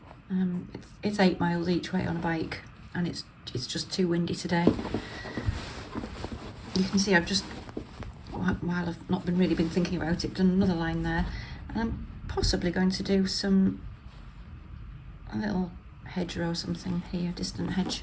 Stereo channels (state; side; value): identical; both; correlation 1.00